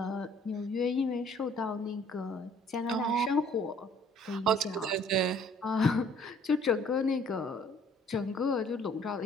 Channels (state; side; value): normal; both; correlation 0.57